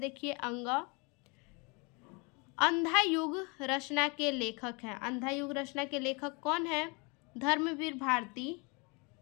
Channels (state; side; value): quieter; right; 30.6 dB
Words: अंग अंधा युग रचना के लेखक हैं। अंधा युग रचना के लेखक कौन है? धर्मवीर भारती,